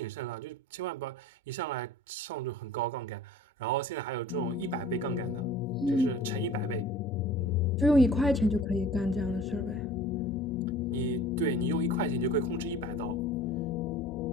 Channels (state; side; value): normal; both; correlation 0.45